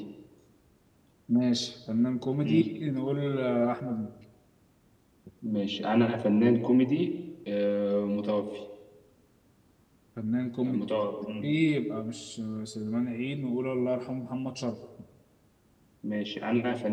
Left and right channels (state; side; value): identical; both; correlation 1.00